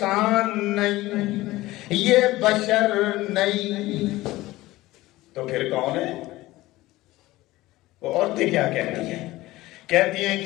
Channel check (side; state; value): right; quieter; 18.0 dB